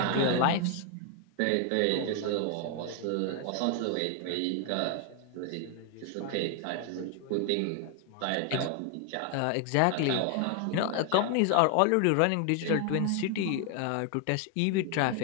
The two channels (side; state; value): both; different; correlation 0.00